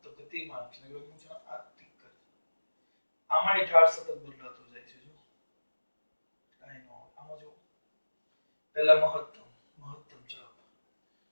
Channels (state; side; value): inverted; both; correlation -1.00